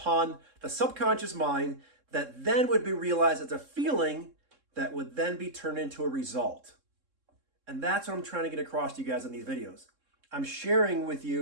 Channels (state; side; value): late; left; 3.7 ms